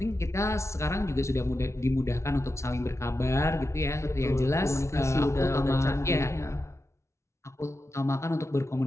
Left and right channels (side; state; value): right; late; 0.13 ms